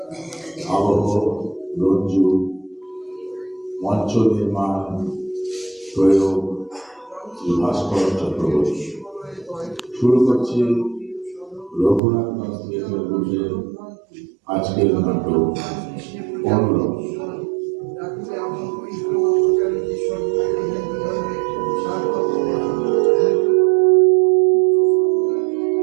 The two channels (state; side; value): drops out; left; at 12.0 s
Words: আবহ, রঞ্জু, মঞ্চ নির্মাণ, প্রয়োগ শ্রী ভাস্কর চক্রবর্তী। শুরু করছি রঘুনাথগঞ্জ থিয়েটার গ্রুপের আজকের নাটক পনেরো।